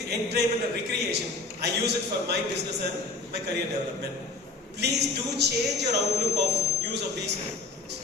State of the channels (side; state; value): right; quieter; 3.4 dB